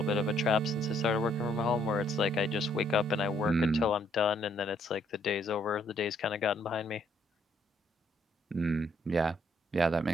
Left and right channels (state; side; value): normal; both; correlation 0.68